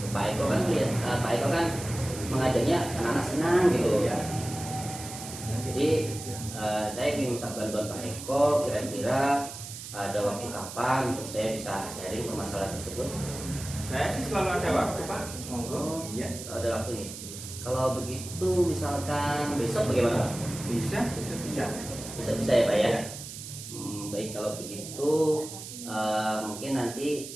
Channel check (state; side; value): noise; right; hiss, 11 dB below the sound